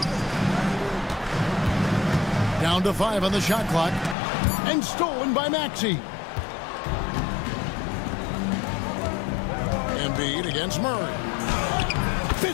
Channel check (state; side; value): drops out; right; at 4.2 s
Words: Down to 5 on the shot clock. And stolen by Maxey. Embiid against Murray.